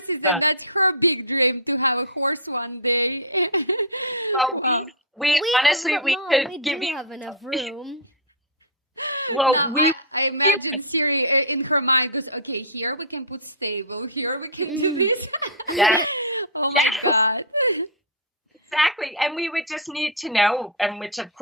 and that's her big dream to have a horse one day. Wow. We honestly, we could give you have enough room. Well, now, I imagine Siri in her mind goes, okay, here we can put stable, here we can do this. Yeah. Oh my God. Exactly. And we would just need to know, and which of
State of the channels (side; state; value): both; normal; correlation -0.11